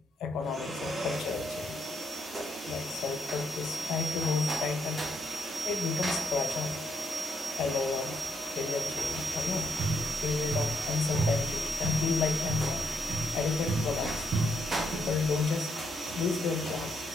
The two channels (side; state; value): both; normal; correlation 0.75